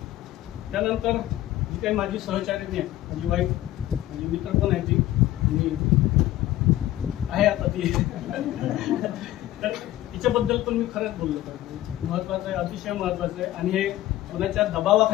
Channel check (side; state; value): right; quieter; 14.6 dB